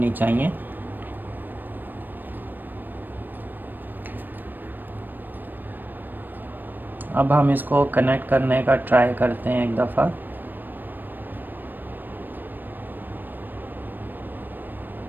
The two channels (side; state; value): left; late; 0.091 ms